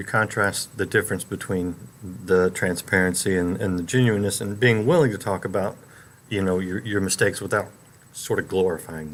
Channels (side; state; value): both; identical; correlation 1.00